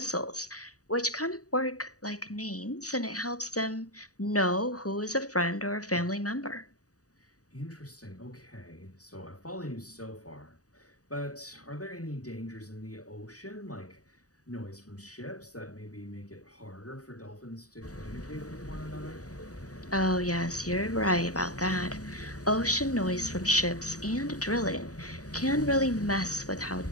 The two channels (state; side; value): late; right; 0.67 ms